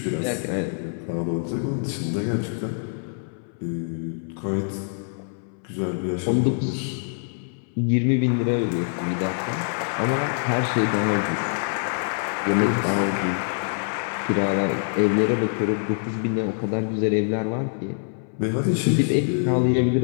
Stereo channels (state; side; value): silent; right; 62 dB below the other